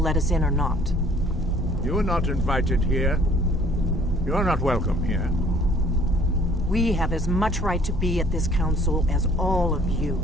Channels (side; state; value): both; normal; correlation 0.56